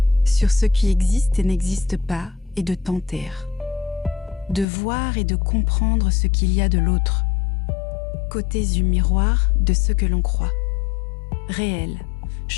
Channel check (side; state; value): right; drops out; at 4.7 s